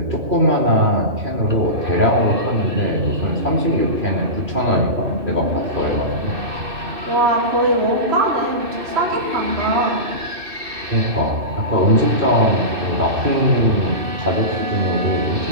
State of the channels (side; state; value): left; late; 2.6 ms